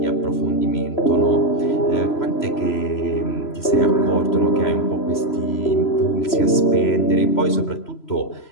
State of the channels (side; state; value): right; late; 3.0 ms